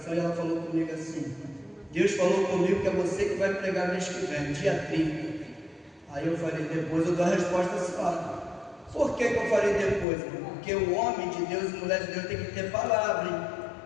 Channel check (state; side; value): drops out; right; at 10.1 s